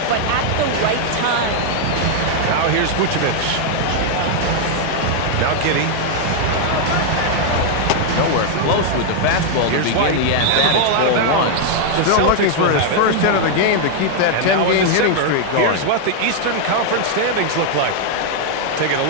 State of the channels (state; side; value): different; both; correlation 0.00